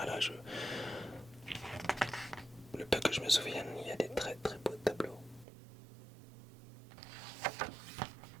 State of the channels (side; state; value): left; drops out; at 5.5 s